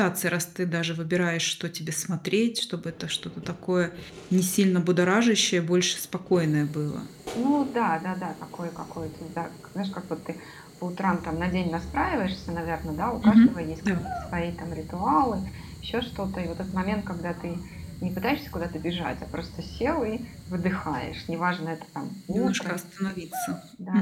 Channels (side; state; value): both; identical; correlation 1.00